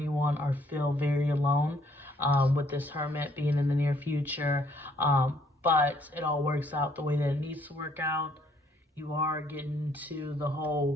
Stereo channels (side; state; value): both; normal; correlation 0.65